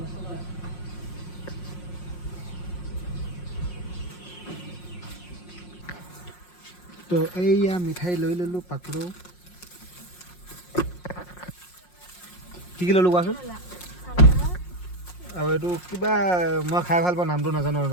তো এইয়া মিঠাই লৈ ল'লোঁ পাকৰো কি ল'লোঁ কোৱাচোন আৰু এইটো কিবা মই খাই ভাল পাওঁ নামটো নাজানো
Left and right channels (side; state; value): right; late; 5.6 ms